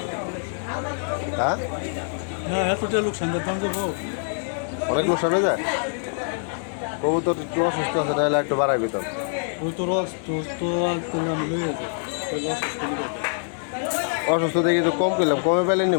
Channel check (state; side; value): silent; right; 62 dB below the other